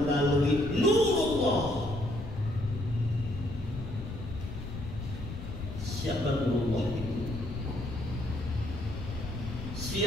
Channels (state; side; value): noise; left; rumble, 8 dB below the sound